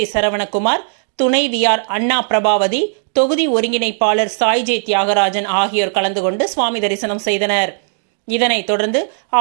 சரவணகுமார், துணைவியார் அண்ணா பிரபாவதி, தொகுதி ஒருங்கிணைப்பாளர் சாய் ஜே தியாகராஜன் ஆகியோர் கலந்து கொண்டு சுவாமி தரிசனம் செய்தனர். இதனைத் தொடர்ந்து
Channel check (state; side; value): silent; left; digital silence